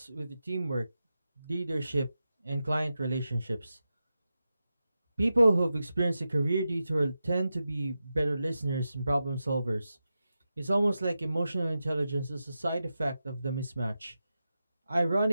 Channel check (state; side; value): inverted; both; correlation -0.91